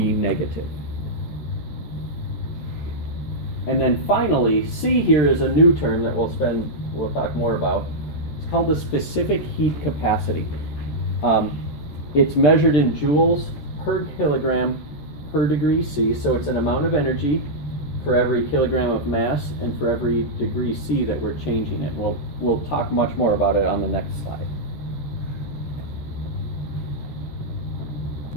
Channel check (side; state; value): right; late; 14 ms